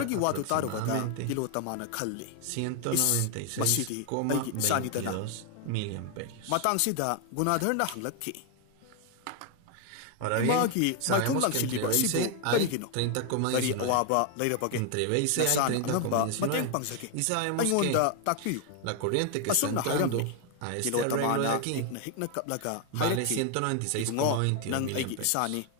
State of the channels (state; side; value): different; both; correlation 0.01